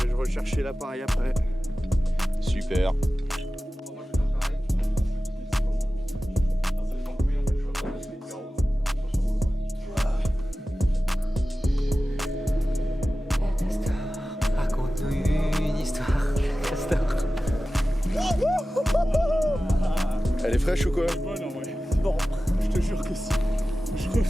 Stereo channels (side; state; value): both; normal; correlation 0.95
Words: Chercher l'appareil après. Super. Raconte-nous une histoire, Castor. Elle est fraîche ou quoi? Bonne en vrai. Bon, je te jure que si. Je